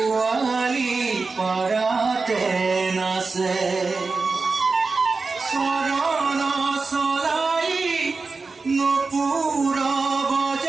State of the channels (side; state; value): left; quieter; 4.1 dB